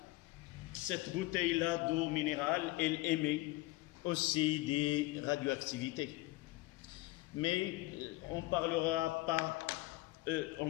cette bouteille-là d'eau minérale, elle émet aussi des radioactivités. Mais on parlera pas, on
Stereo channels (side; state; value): right; quieter; 19.8 dB